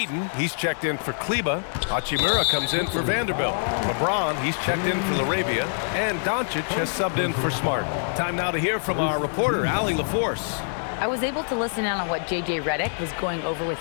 he's checked in for Kleber. Hachimura comes in for Vanderbilt. LeBron, he's checked in for Laravia. And Doncic has subbed in for Smart. Time now to hear from our reporter, Allie LaForce. I was able to listen in on what J.J. Redick was going over with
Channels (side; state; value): right; silent; 62 dB below the other